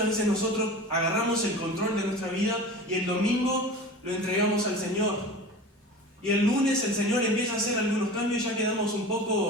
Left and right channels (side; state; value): both; normal; correlation 0.34